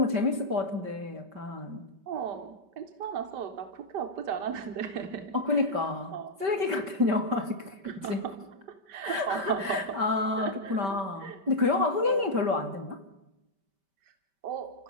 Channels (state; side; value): late; left; 5.1 ms